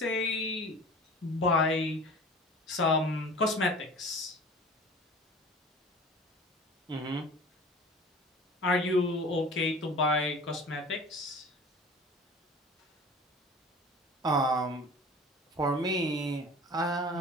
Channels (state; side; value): normal; both; correlation 0.41